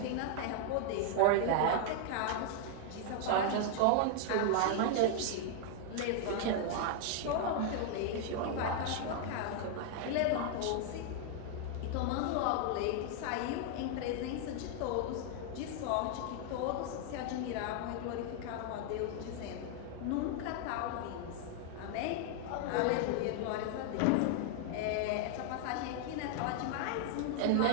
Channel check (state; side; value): different; both; correlation 0.00